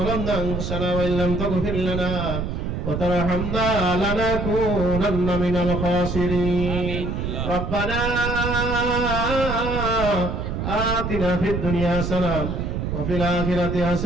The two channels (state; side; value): noise; right; rumble, 3 dB below the sound